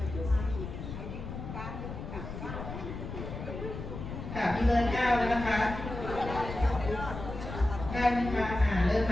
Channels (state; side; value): noise; left; rumble, 8 dB below the sound